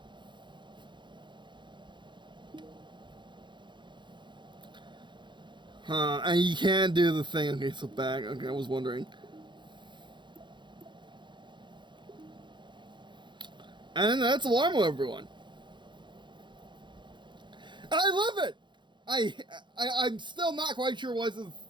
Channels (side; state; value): left; late; 0.23 ms